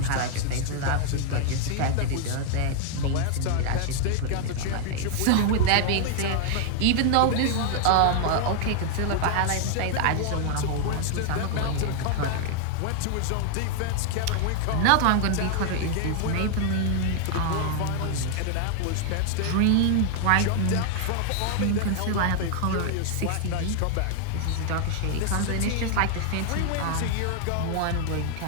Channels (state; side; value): different; both; correlation 0.00